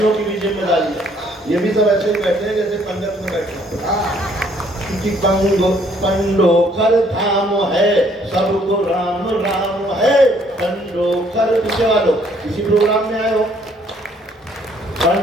की भी जिम्मेदारी है। ये भी सब ऐसे ही बैठे हैं जैसे पंडित में बैठे हैं कि पंडोखर धाम है, सबको राम राम है। पंडोखर पीछे वालों किसी प्रोग्राम में आए हो?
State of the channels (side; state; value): both; normal; correlation 0.64